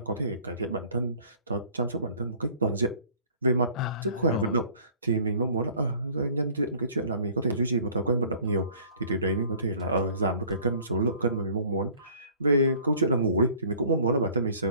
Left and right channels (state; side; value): inverted; both; correlation -0.53